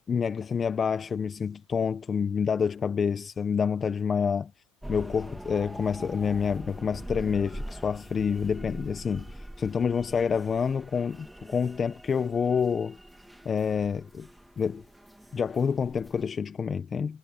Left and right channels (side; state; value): right; quieter; 5.9 dB